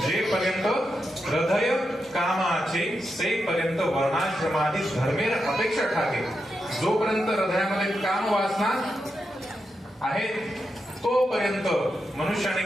जेपर्यंत हृदय कामाचे सेपर्यंत वर्णाश्रमादी धर्मेर अपेक्षा ठाके. जोपर्यंत हृदयामध्ये काम वासना आहे तोपर्यंत मनुष्याने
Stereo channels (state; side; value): normal; both; correlation 0.86